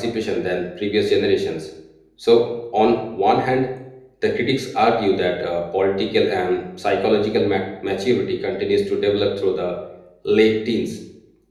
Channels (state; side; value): identical; both; correlation 1.00